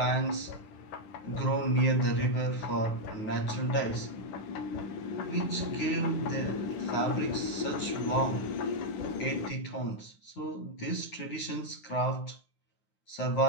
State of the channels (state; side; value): late; right; 9.5 ms